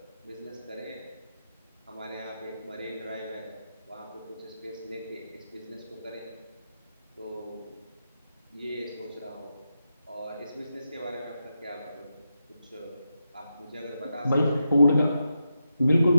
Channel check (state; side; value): inverted; both; correlation -0.87